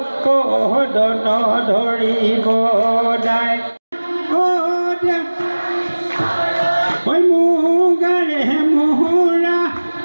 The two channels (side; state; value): both; inverted; correlation -1.00